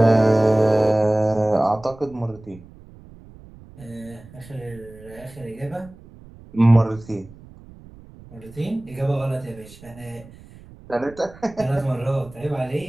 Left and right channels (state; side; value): noise; right; rumble, 21 dB below the sound